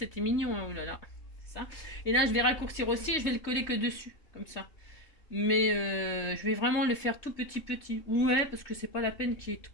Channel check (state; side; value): late; right; 3.3 ms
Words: mignon. Hein. Oh là là. C'est ça. Et là, je vais raccourcir aussi. Je vais le coller que dessus. Comme ça. Mais je vais vraiment le faire tout petit. Ouais, parce que c'est pas la peine qu'il y ait